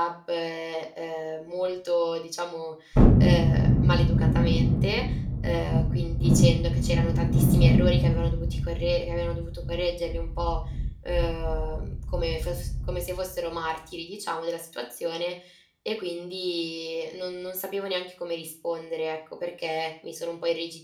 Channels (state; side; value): identical; both; correlation 1.00